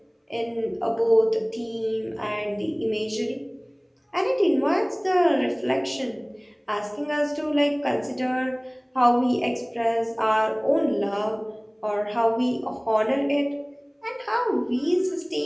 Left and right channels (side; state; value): both; identical; correlation 1.00